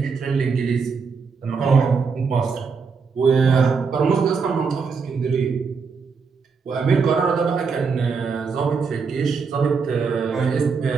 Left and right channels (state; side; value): quieter; left; 5.3 dB